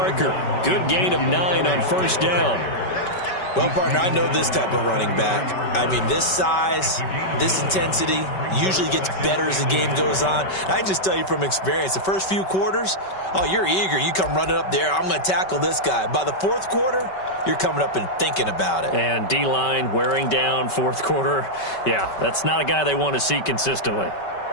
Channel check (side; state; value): right; late; 5.2 ms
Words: Good gain of 9 on 1st down. Well, partner, I know this type of running back. I mean, this size, this intensity usually gets better as the game goes on. I can just tell you from experience, the first few quarters, oh, you're eager. You come running up there, I'm going to tackle this guy. By the 4th quarter, you're coming up and thinking about it. And D-line wearing down 4th quarter. Yeah, that's not a guy they want to see consistently.